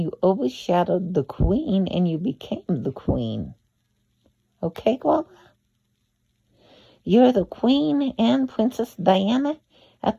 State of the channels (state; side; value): identical; both; correlation 1.00